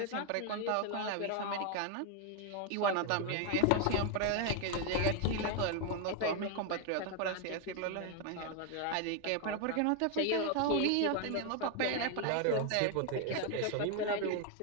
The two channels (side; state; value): both; different; correlation 0.01